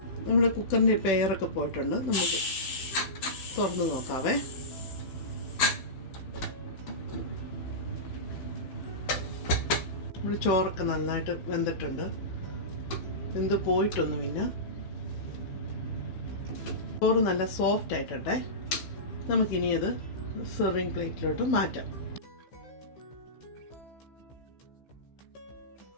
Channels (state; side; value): late; right; 16 ms